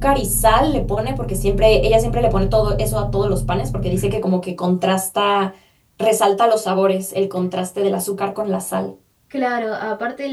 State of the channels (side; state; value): both; identical; correlation 1.00